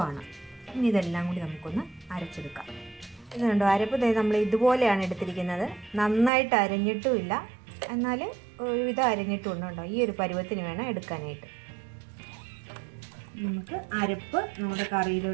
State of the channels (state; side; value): drops out; left; at 6.3 s